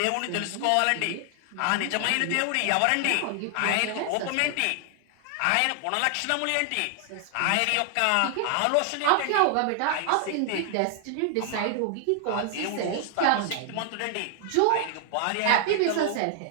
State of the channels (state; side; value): different; both; correlation 0.00